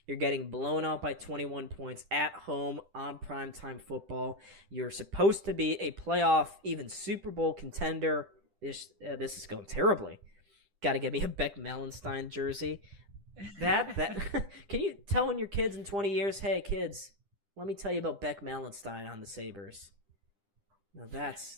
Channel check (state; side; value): late; left; 10 ms